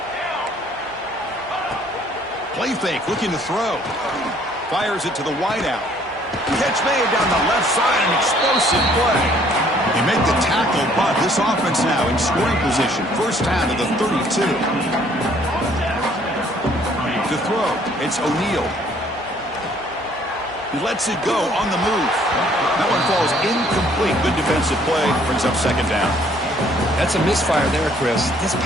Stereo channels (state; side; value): normal; both; correlation 0.61